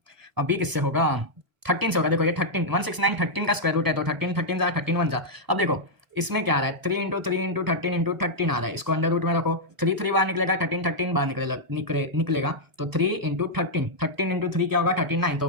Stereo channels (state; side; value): late; left; 1.0 ms